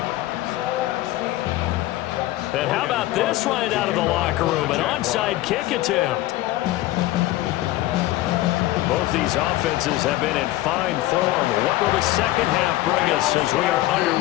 And how about this right out of the locker room? An onside kick attempt. Both these offenses have been in fine form. What will the second half bring us as we are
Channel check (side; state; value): right; quieter; 16.4 dB